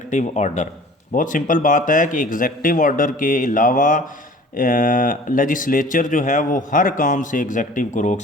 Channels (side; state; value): both; normal; correlation 0.47